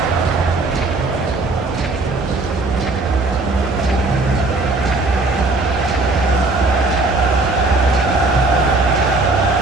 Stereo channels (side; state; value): left; quieter; 3.2 dB